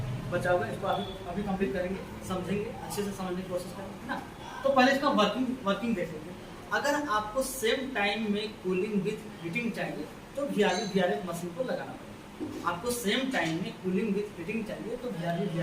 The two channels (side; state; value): both; identical; correlation 1.00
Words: बचा हुआ है। इसको अभी कंप्लीट करेंगे, समझेंगे, अच्छे से समझने की कोशिश करेंगे, है ना। तो पहले इसका वर्किंग देखेंगे। अगर आपको सेम टाइम में कूलिंग विथ हीटिंग चाहिए तो वीआरएफ मशीन को लगाना पड़ेगा। आपको सेम टाइम में कूलिंग विथ हीटिंग चाहिए तो